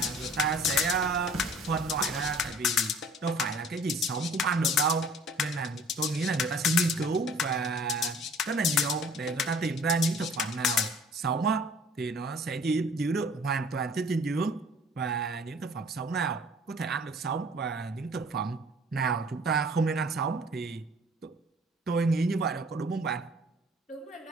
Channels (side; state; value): both; normal; correlation 0.51